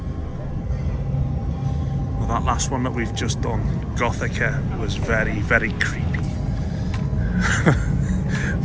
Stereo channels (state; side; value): identical; both; correlation 1.00